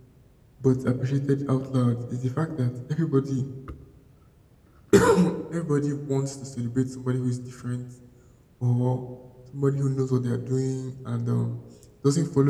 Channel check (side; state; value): both; identical; correlation 1.00